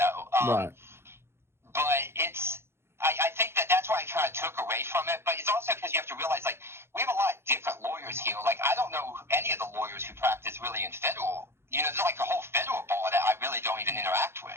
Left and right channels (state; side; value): late; left; 0.12 ms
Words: Right. But I think that's why I kind of took away from it. But it's also because you have to realize, like, we have a lot of different lawyers here. Like, I don't know any of the lawyers who practice really in federal. There's like a whole federal bar that I really don't even interact